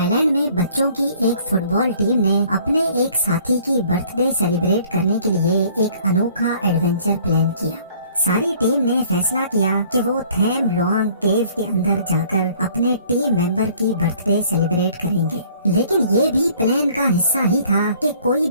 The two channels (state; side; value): inverted; both; correlation -0.56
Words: land میں بچوں کی ایک فٹ بال ٹیم نے اپنے ایک ساتھی کی برتھ ڈے سیلیبریٹ کرنے کے لیے ایک انوکھا ایڈونچر پلان کیا۔ ساری ٹیم نے فیصلہ کیا کہ وہ تھیم لوانگ کیو کے اندر جا کر اپنے ٹیم ممبر کی برتھ ڈے سیلیبریٹ کریں گے، لیکن یہ بھی پلان کا حصہ ہی تھا کہ کوئی